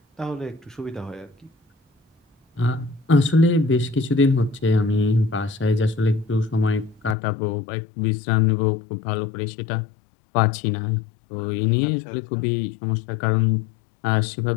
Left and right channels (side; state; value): right; drops out; at 7.2 s